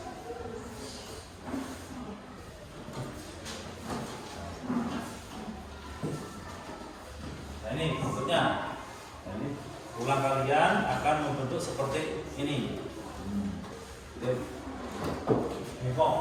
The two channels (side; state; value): both; identical; correlation 1.00